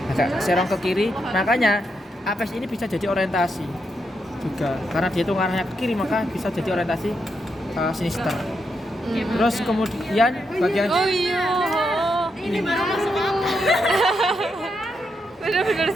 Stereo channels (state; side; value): normal; both; correlation 0.82